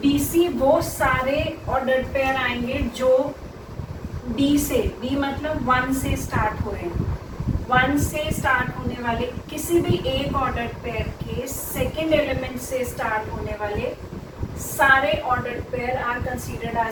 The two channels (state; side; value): identical; both; correlation 1.00